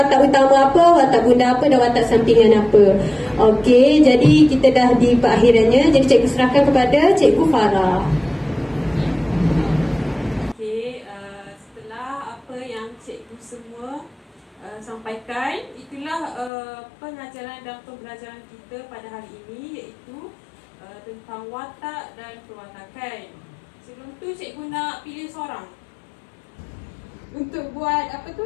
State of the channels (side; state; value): right; drops out; at 16.5 s